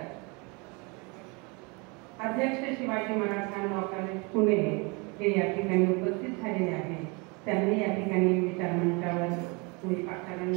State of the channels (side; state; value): left; quieter; 29.8 dB